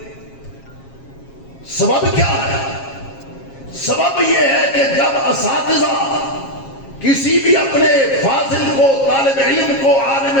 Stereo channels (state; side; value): late; right; 7.4 ms